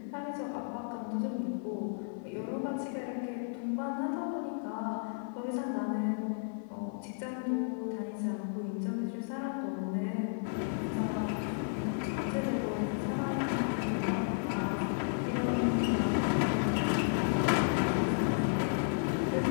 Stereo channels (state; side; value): silent; right; 56 dB below the other